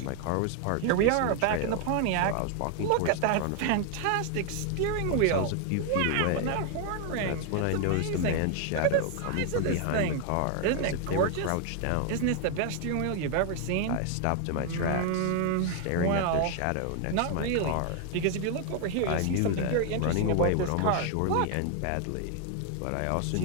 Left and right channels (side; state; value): both; different; correlation 0.01